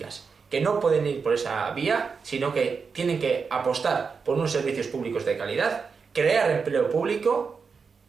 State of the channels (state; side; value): quieter; left; 5.4 dB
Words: que no pueden ir por esa vía, sino que tienen que apostar por unos servicios públicos de calidad, crear empleo público